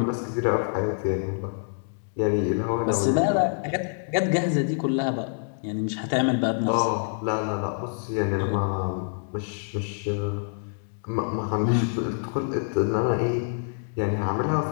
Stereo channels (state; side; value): silent; right; digital silence